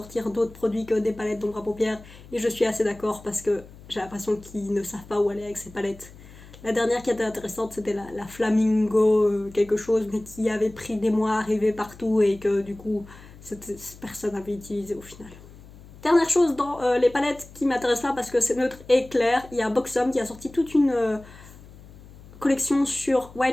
d'autres produits que des palettes d'ombre à paupières, et je suis assez d'accord parce que j'ai l'impression qu'ils ne savent pas où aller avec ces palettes. La dernière qui était intéressante, c'était la Flamingo quelque chose, mais qui avait pris des mois à arriver partout et que du coup personne n'avait utilisé au final. Dernière chose dans les palettes qui m'intéressent pas parce que c'est neutre et clair, il y a Boxom qui a sorti toute une collection sur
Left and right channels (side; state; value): left; noise; hum, 20 dB below the sound